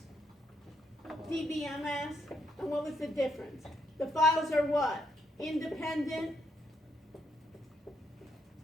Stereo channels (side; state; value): both; normal; correlation 0.76